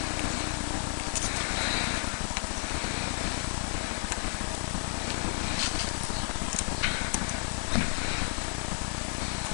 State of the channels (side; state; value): right; silent; 57 dB below the other